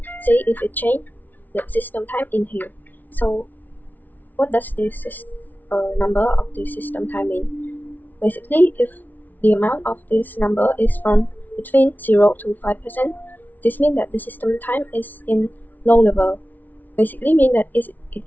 see if it changed the system time in here. So what does this number of the system time mean? Basically, if the amount of this number is from between 0 to 5%, this means that the system time is in low level. Basically means that it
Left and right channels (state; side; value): late; right; 0.081 ms